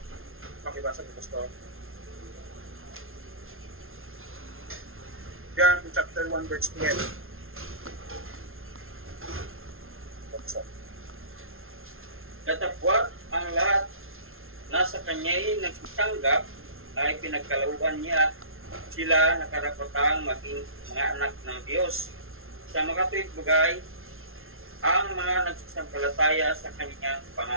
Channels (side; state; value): left; late; 0.61 ms